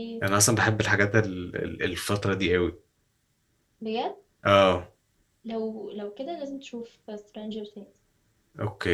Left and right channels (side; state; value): both; identical; correlation 1.00